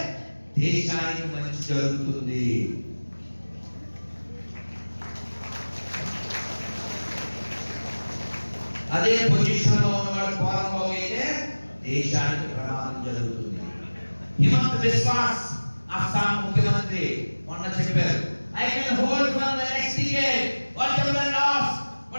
దేశానికి మంచి జరుగుతుంది. అదే పొజిషన్ లో ఉన్నవాడు పోరంబోగు అయితే దేశానికి ప్రమాదం జరుగుతుంది. హిమంత విశ్వాస్ అస్సాం ముఖ్యమంత్రి మొన్న చెప్పారు, I can hold for the next decade what ever last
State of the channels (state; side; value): inverted; both; correlation -1.00